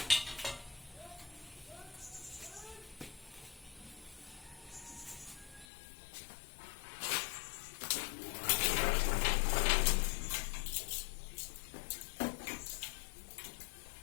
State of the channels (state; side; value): drops out; right; at 5.7 s